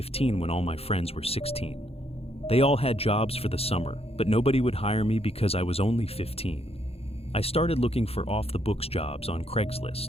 when all my friends were 16. They all had jobs for the summer, but nobody would hire me because I was only 15. I started looking for off-the-books jobs on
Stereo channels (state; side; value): late; right; 0.29 ms